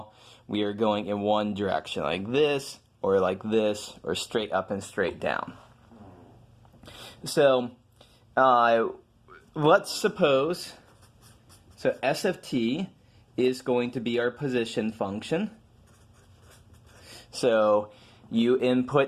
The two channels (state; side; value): identical; both; correlation 1.00